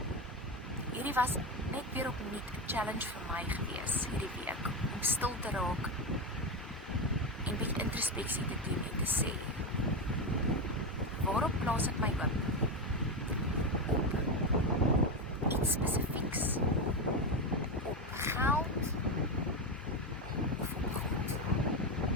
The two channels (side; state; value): both; normal; correlation 0.13